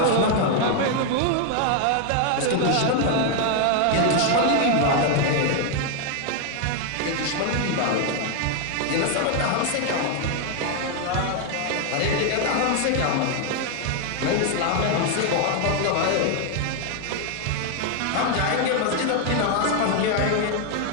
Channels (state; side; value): different; both; correlation 0.01